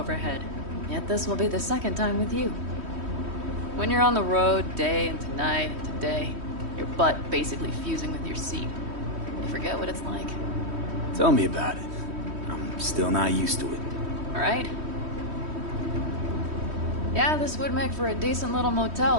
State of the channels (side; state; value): left; late; 3.1 ms